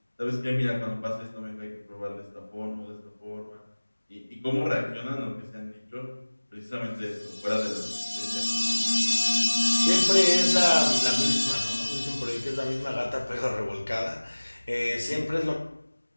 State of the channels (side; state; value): both; inverted; correlation -1.00